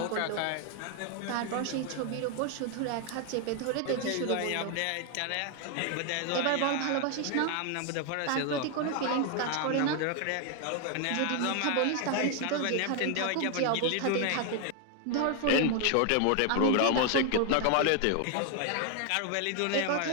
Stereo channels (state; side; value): different; both; correlation 0.00